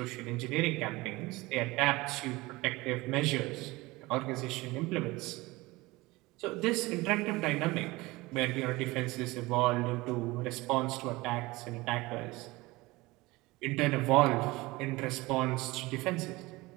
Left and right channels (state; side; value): quieter; left; 21.3 dB